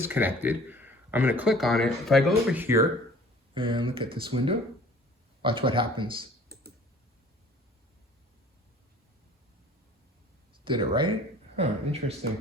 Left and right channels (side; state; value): both; normal; correlation 0.49